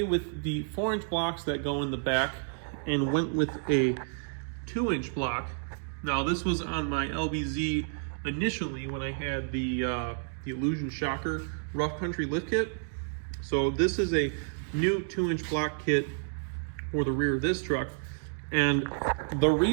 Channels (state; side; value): silent; left; digital silence